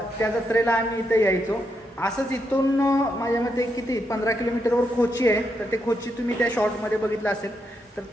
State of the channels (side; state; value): both; normal; correlation 0.81